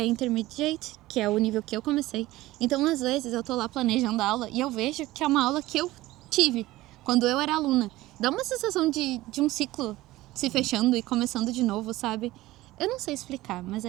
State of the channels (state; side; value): quieter; left; 17.6 dB